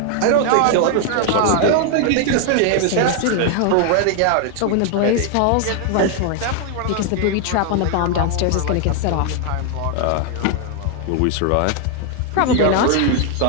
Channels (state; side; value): different; both; correlation 0.00